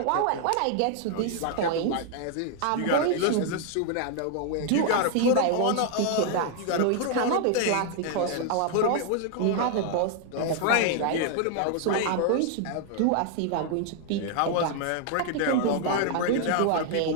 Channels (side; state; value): both; different; correlation 0.00